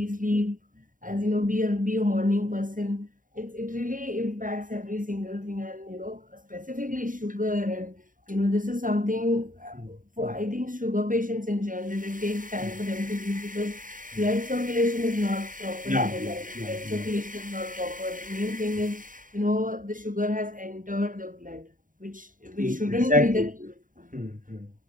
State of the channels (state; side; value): late; left; 0.39 ms